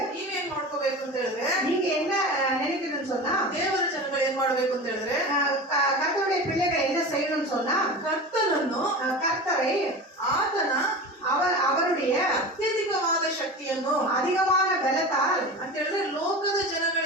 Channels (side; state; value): both; normal; correlation 0.30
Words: ನೀವೇನ್ ಮಾಡ್ಕೋಬೇಕು ಅಂತ ಹೇಳಿದ್ರೆ, நீங்க என்ன நினைக்கணும்னு சொன்னா, ದೇವರ ಜನಗಳು ಏನ್ ಮಾಡ್ಬೇಕು ಅಂತ ಹೇಳಿದ್ರೆ, கர்த்தருடைய பிள்ளைகள் என்ன செய்யணும்னு சொன்னா, ಕರ್ತನನ್ನು, கர்த்தரை, ಆತನ அவருடைய ಅತ್ಯಧಿಕವಾದ ಶಕ್ತಿಯನ್ನು, அதிகமான பலத்தால் ಅಂತ ಹೇಳಿದ್ರೆ ಲೋಕದ